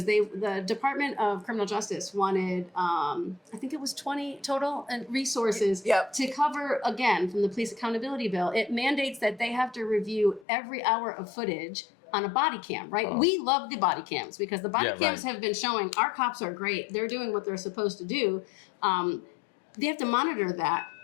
the Department of Criminal Justice wanted, I think it was 20 total resources Yep. to cover, again, from the police accountability bill. It mandates that they have to review every hour of footage on a body cam, right? Oh. We love the body cams because the body Yeah, cams right. have been showing our cops are great. They're doing what they're supposed to do. They have to monitor that.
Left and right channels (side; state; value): right; drops out; at 10.5 s